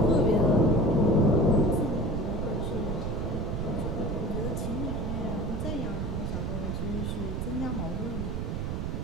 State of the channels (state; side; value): noise; right; rumble, 2 dB below the sound